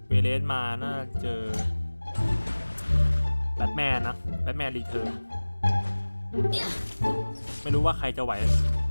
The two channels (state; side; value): inverted; both; correlation -1.00